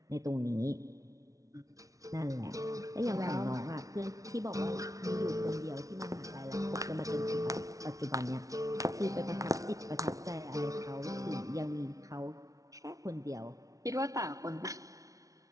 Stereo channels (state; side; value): late; left; 0.17 ms